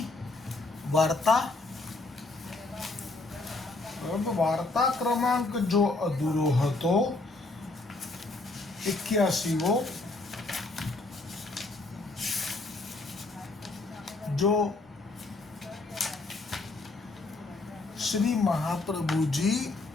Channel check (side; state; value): right; quieter; 3.2 dB